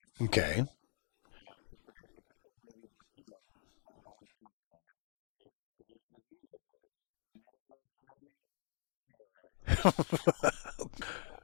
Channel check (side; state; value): right; silent; digital silence